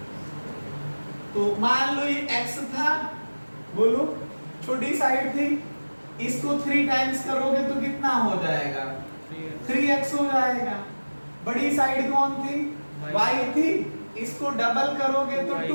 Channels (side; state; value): both; inverted; correlation -1.00